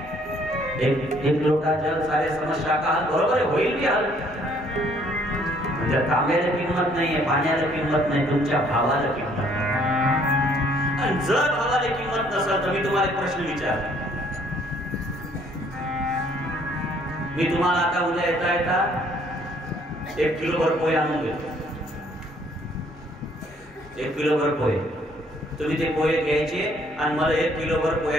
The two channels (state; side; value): normal; both; correlation 0.63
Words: एक लोटा जल सारे समस्या का हल बरोबर आहे, होईल की हल. म्हणजे तांब्याला किंमत नाहीये, पाण्याला किंमत नाही, तुमच्या भावाला किंमत नाही. आणि जर भावाला किंमत नसेल तर मी तुम्हाला एक प्रश्न विचारतो. मी तुम्हाला आता उद्या येता येता 1 किलोभर पोहे आणून देतो. 1 किलोभर पोहे. तुम्ही ते पोहे घ्यायचे आणि मला 1 किलोभर